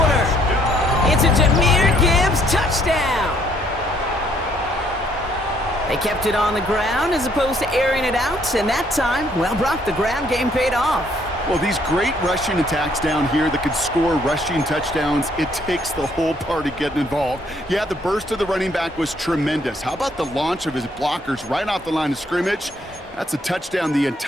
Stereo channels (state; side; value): normal; both; correlation 0.66